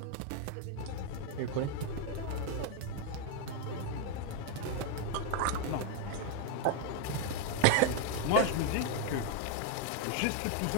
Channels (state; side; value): different; both; correlation 0.00